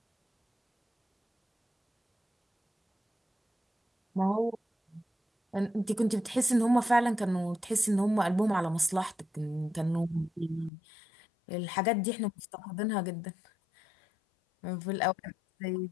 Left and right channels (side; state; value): right; drops out; at 10.7 s